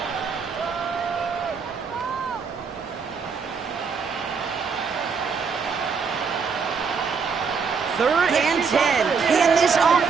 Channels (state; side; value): quieter; left; 5.6 dB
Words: Third and 10. Can this